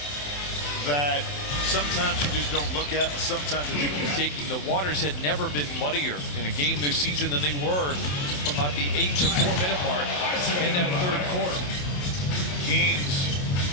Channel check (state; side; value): late; right; 27 ms